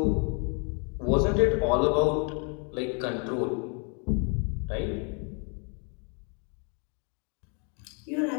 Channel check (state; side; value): quieter; right; 38.1 dB